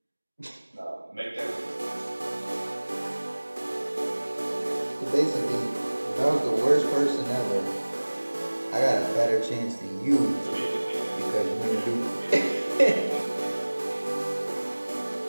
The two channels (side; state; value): both; inverted; correlation -1.00